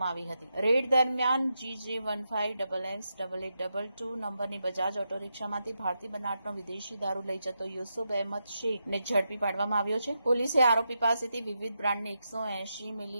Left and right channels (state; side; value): inverted; both; correlation -0.86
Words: આવી હતી. રેડ દરમિયાન GJ15XX8822 નંબરની બજાજ ઓટો રિક્ષામાંથી ભારતીય બનાવટનો વિદેશી દારૂ લઈ જતો યુસુફ અહેમદ શેખને ઝડપી પાડવામાં આવ્યો છે. પોલીસે આરોપી પાસેથી વિવિધ બ્રાન્ડની 180